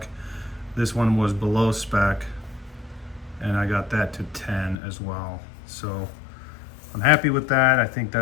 This one was below spec, and I got that to 10 as well. So I'm happy with that. I think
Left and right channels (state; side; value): drops out; right; at 4.8 s